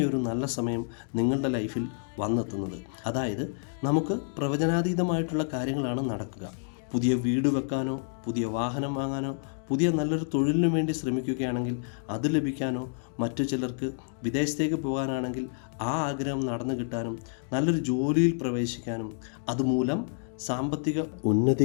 നല്ല സമയം നിങ്ങളുടെ ലൈഫിൽ വന്നെത്തുന്നത്. അതായത് നമുക്ക് പ്രവചനാതീതമായിട്ടുള്ള കാര്യങ്ങളാണ് നടക്കുക. പുതിയ വീട് വെക്കാനോ പുതിയ വാഹനം വാങ്ങാനോ പുതിയ നല്ലൊരു തൊഴിലിനു വേണ്ടി ശ്രമിക്കുകയാണെങ്കിൽ അത് ലഭിക്കാനോ, മറ്റു ചിലർക്ക് വിദേശത്തേക്ക് പോകാനാണെങ്കിൽ ആ ആഗ്രഹം നടന്നു കിട്ടാനും, നല്ലൊരു ജോലിയിൽ പ്രവേശിക്കാനും, അതുമൂലം സാമ്പത്തിക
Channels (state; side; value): silent; right; digital silence